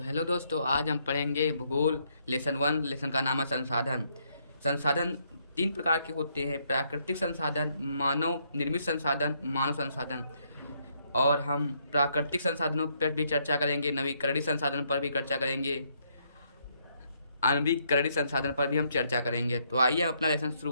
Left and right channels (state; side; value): inverted; both; correlation -0.72